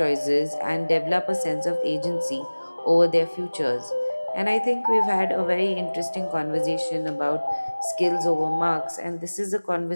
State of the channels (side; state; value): both; inverted; correlation -1.00